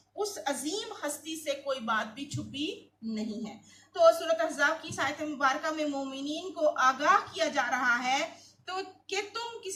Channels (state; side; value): identical; both; correlation 1.00